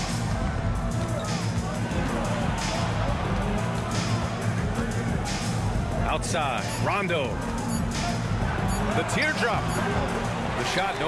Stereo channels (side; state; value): both; identical; correlation 1.00